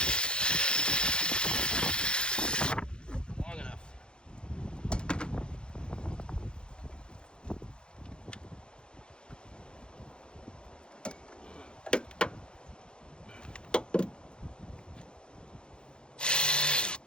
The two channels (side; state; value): right; late; 0.051 ms